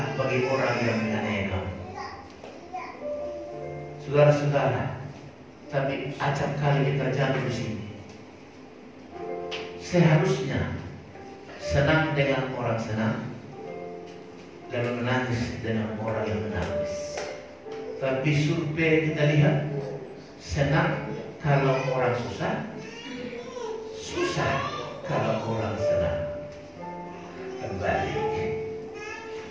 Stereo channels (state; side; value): identical; both; correlation 1.00